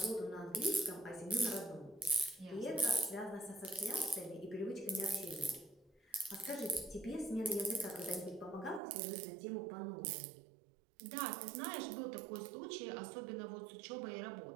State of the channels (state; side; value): drops out; left; at 8.8 s